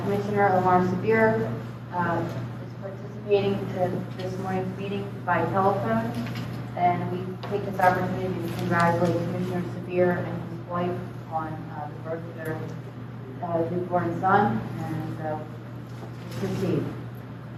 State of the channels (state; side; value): identical; both; correlation 1.00